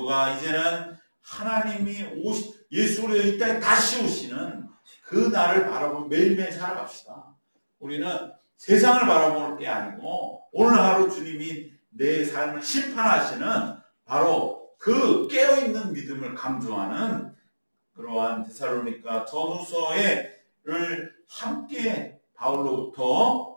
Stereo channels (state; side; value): inverted; both; correlation -1.00